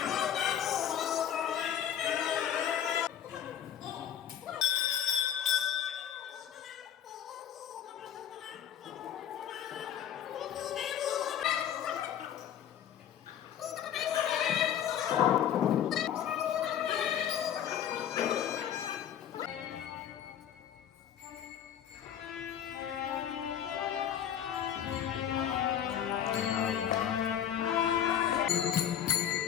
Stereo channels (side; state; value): right; quieter; 9.8 dB